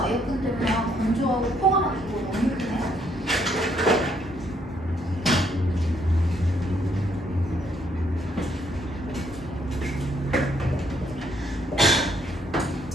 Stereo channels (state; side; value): normal; both; correlation 0.70